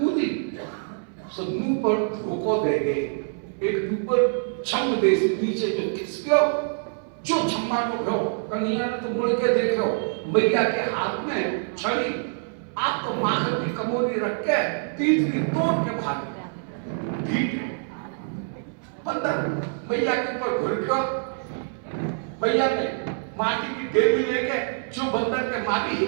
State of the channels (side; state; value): left; silent; 61 dB below the other